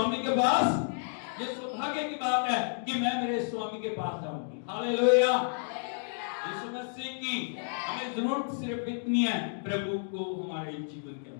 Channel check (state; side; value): silent; right; digital silence